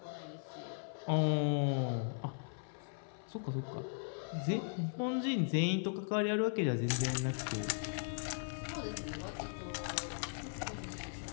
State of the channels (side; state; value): right; silent; 52 dB below the other